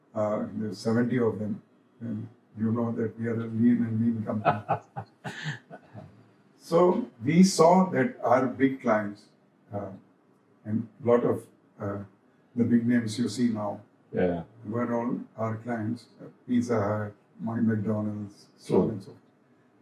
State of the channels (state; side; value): identical; both; correlation 1.00